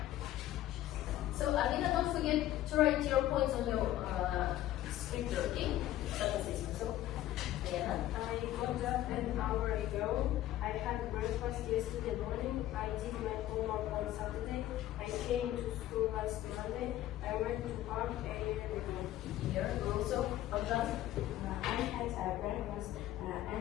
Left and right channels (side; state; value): right; quieter; 13.8 dB